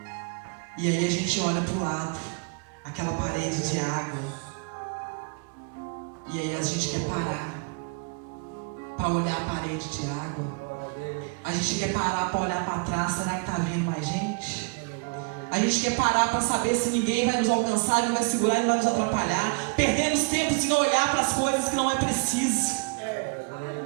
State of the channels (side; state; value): left; quieter; 33.4 dB